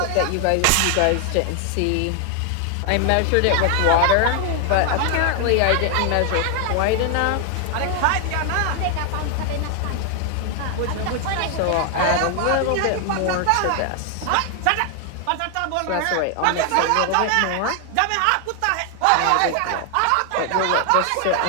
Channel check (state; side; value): different; both; correlation 0.00